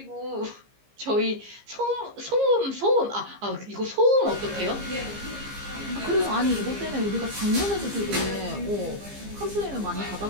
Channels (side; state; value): left; late; 15 ms